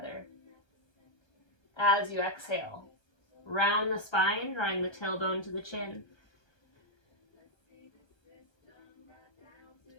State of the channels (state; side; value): late; right; 1.2 ms